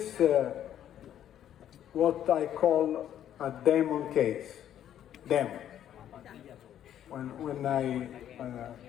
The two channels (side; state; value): right; quieter; 10.7 dB